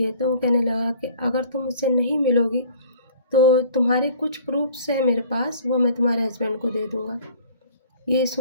तो वो कहने लगा कि अगर तुम मुझसे नहीं मिलोगी तो तुम्हारे कुछ प्रूफ़्स हैं मेरे पास, वो मैं तुम्हारे हस्बैंड को दे दूँगा। ये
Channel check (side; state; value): both; inverted; correlation -0.50